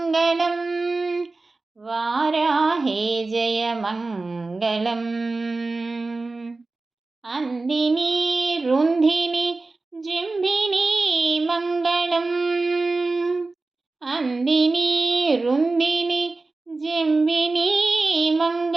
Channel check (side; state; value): left; quieter; 3.5 dB